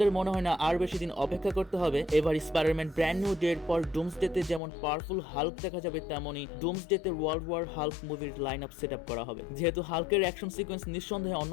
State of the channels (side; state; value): right; drops out; at 4.6 s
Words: মনে হয় না আর বেশি দিন অপেক্ষা করতে হবে। এবার স্পাইডারম্যান ব্র্যান্ড নিউ ডের পর ডুমসডেতে যেমন পাওয়ারফুল হাল্ক দেখা যাবে তেমনই ডুমসডেতে ওয়ার্ল্ড ওয়ার হাল্ক মুভির লাইন আপ সেট আপ করা হবে। যেহেতু হাল্কের অ্যাকশন সিকোয়েন্স নিঃসন্দেহে